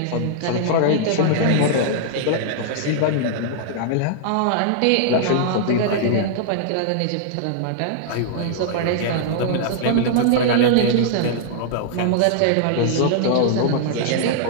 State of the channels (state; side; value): different; both; correlation -0.01